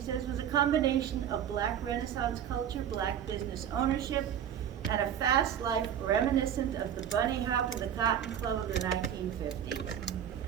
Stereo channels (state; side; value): quieter; left; 9.4 dB